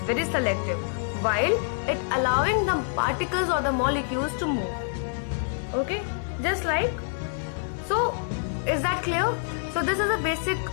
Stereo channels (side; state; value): right; silent; digital silence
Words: very selective, while it allowing the particles or the molecules to move. Okay, just like so. Is that clear? So this is a basic